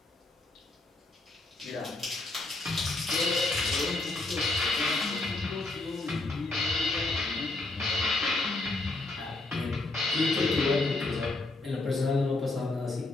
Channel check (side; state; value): right; quieter; 3.1 dB